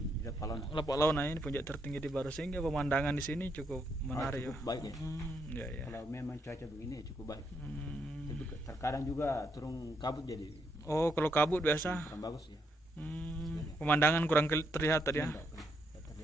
Lapak Launa. Lapak Launa ini puncak tertinggi di Baru sehingga pemandangan di sini cukup menarik Cukup baik ya. Ya. Kalau memang cuaca begini ya cukup baik. Tapi terkadang juga turun kabut jadi Oh, kalau kabut biasa kurang bagus ya. pemandangan kurang terlihat tadi ya. Enggak,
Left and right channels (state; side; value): normal; both; correlation 0.77